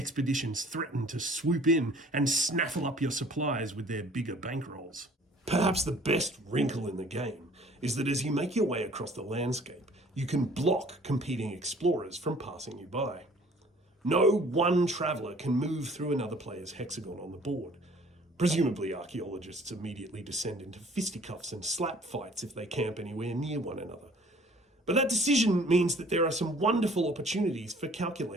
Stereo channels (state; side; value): normal; both; correlation 0.54